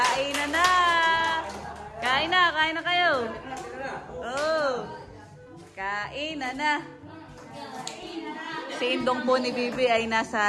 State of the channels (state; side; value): identical; both; correlation 1.00